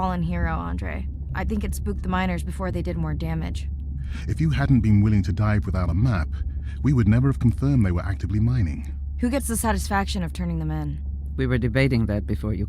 hero, Andre. I think it spooked the miners before they did more damage. If you hadn't been willing to dive without a map, we would never have confirmed they were actively mining. Who gets the satisfaction of turning them in? We were debating that before you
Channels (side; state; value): both; identical; correlation 1.00